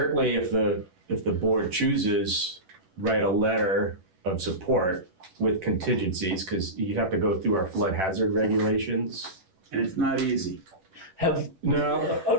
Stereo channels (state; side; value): late; left; 11 ms